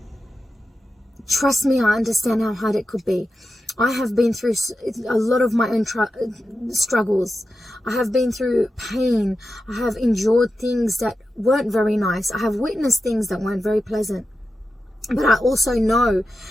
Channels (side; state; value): both; normal; correlation 0.91